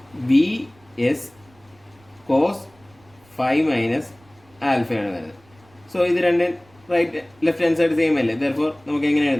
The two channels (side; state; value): right; noise; rumble, 30 dB below the sound